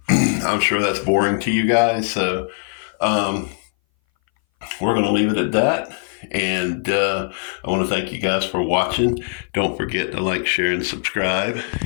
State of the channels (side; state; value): right; silent; 60 dB below the other